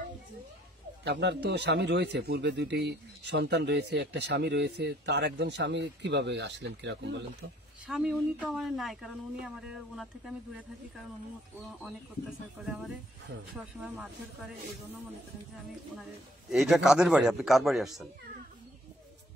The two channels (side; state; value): both; normal; correlation 0.62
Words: আপনার তো স্বামী রয়েছে, পূর্বে দুটি সন্তান রয়েছে, একটা স্বামী রয়েছে, তার একজন স্বামী কিভাবে আসলেন, কিরকম বলেন তো? স্বামী উনি তো আমার নাই, কারণ উনি আমার ওনার থেকে আমি দূরে থাকি, কারণ উনি অনেক অত্যাচার করে আমারে, সবসময় মারধর করে, এই জন্য মনে করেন যে আমি ওনারে। এইটা কাদের বাড়ি, আপনি কার বাড়ি আসছেন?